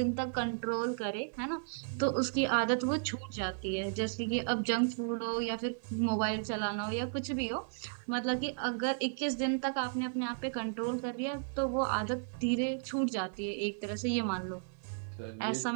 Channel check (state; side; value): silent; left; digital silence